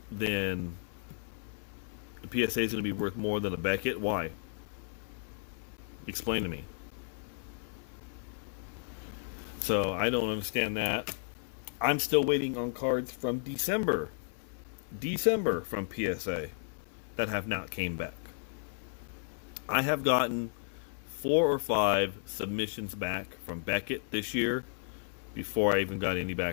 than the PSA is going to be worth more than a Beckett? Why? Explain to me. So I don't understand that. I'm still waiting on cards from December from PSA that have not came back. I have gotten 4 or 5 submissions back from Beckett this year before I even got any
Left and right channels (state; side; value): silent; right; 55 dB below the other